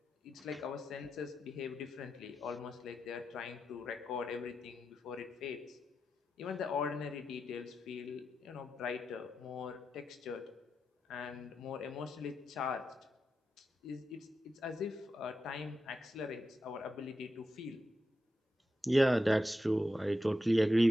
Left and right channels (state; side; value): normal; both; correlation 0.88